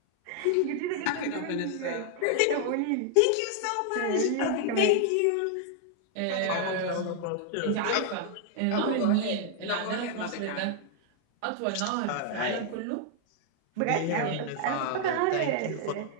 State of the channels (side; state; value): both; different; correlation 0.00